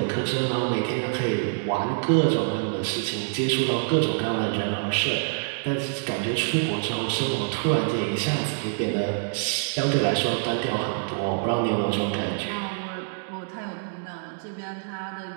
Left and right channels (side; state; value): left; silent; digital silence